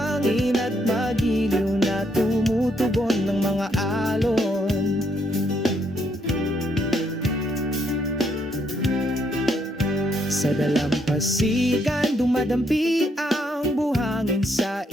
at magiliw na tumutugon ng mga alon. Sa dalampasigan dumadampi ang buhangin sa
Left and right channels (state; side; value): normal; both; correlation 0.74